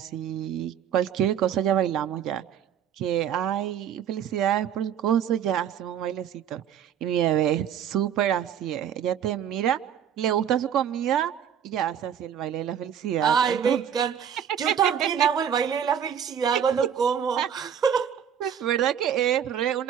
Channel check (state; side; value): quieter; left; 8.9 dB